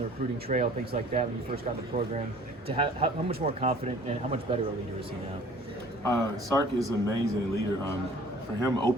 recruiting trail, things like that, when you first got in the program, to how much more confident and how much better a leader is he now? Sark is an amazing leader. For him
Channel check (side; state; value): both; normal; correlation 0.51